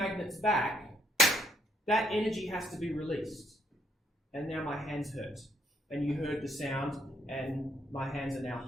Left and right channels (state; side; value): normal; both; correlation 0.71